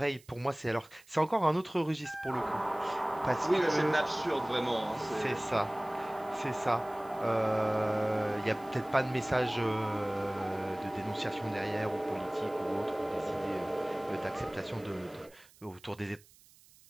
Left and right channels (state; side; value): noise; right; hiss, 26 dB below the sound